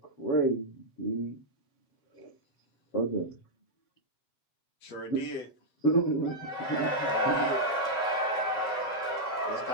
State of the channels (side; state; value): right; late; 7.5 ms